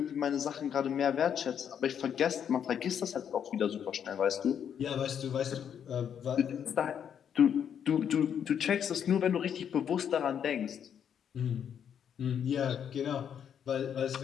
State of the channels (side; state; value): right; quieter; 8.5 dB